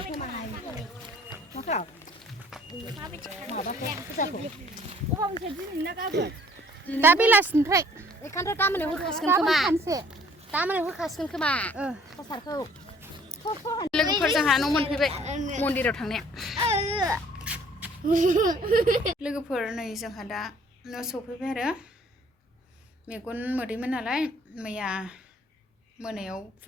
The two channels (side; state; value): both; normal; correlation 0.57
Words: दा बेलासिनिफ्राय एखानथ' गामोन होखासिगोन खोमा प्रसादखौ लोगोफोर जोंहा न' मोनफैबाय मन्दिराव थांनाया लोगोफोर नै जोंहा दा न' सफैबाय आरो मेगन मोदैमोन नालाय मैया मोनायाव